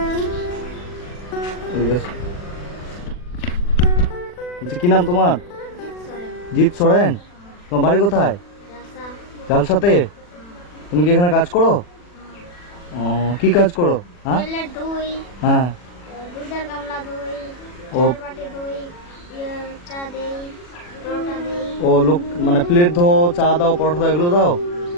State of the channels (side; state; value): right; late; 40 ms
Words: কি নাম তোমার? জিৎ সোরেন। তোমার বাড়ি কোথায়? জালসাতে। তুমি কি এখানে কাজ করো? কি কাজ করো? হ্যাঁ হ্যাঁ। ও ও লোক মানে প্লেট ধো, চা দাও, পরোটা দাও, এগুলো দাও।